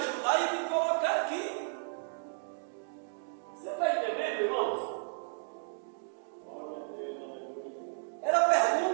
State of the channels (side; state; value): left; silent; digital silence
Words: e me colocar aqui. Você está entendendo, irmãos? Era a